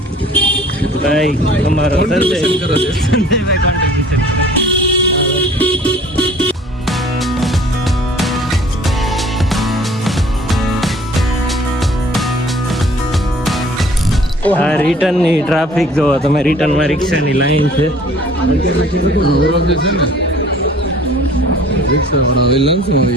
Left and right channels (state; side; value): normal; both; correlation 0.51